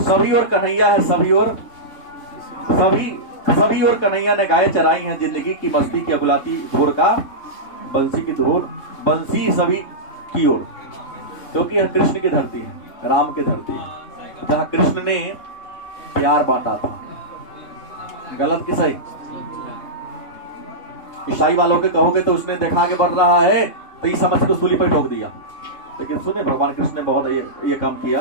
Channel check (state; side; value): late; right; 3.6 ms